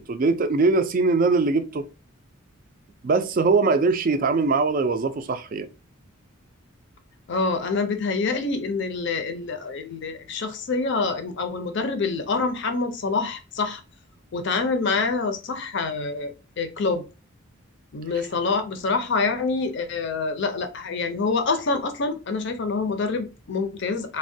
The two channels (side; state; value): both; normal; correlation 0.09